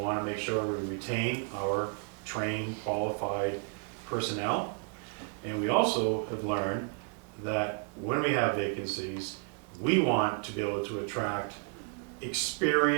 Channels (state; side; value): quieter; left; 39.7 dB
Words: to make sure we retain our trained, qualified personnel. And we also have learned that when we have vacancies, we want to be able to attract